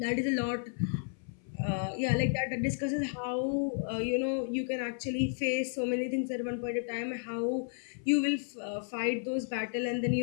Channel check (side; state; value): right; silent; 56 dB below the other